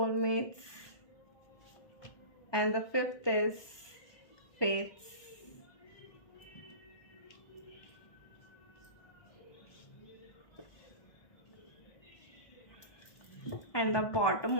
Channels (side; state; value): right; late; 1.2 ms